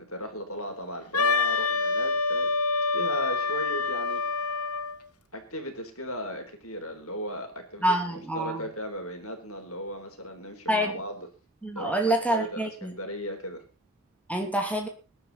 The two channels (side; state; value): both; normal; correlation -0.01